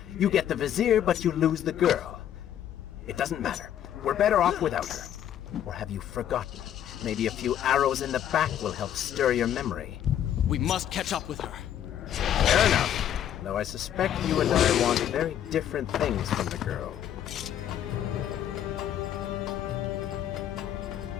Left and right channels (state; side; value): quieter; right; 10.5 dB